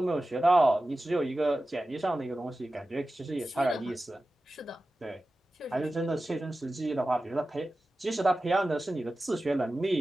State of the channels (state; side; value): normal; both; correlation 0.95